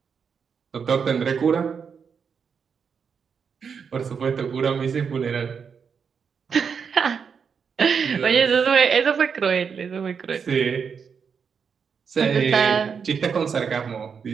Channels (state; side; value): quieter; left; 6.3 dB